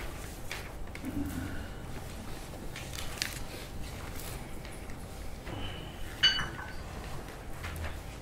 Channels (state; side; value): identical; both; correlation 1.00